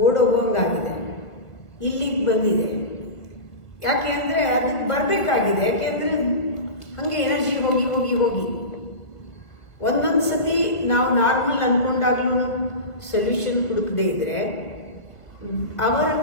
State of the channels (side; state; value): right; late; 1.5 ms